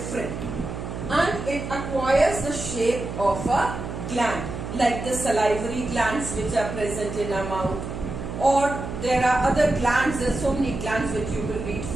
and it acquires the shape of a gland, like the salivary glands which are present in our mouth, or there are other glands. There are so many glands which you will read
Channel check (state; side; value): noise; right; hum, 7 dB below the sound